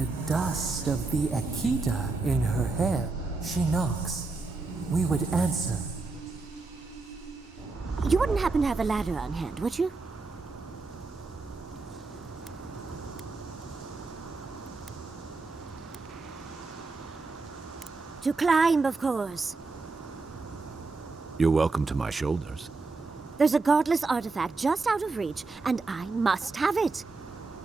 dust of the Akita in her hair. She knocks. We would answer. You wouldn't happen to have a ladder on hand, would you? To climb, of course. You're welcome to my shoulders. There's a godless artifact just out of reach, and I must have it.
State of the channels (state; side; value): quieter; left; 3.8 dB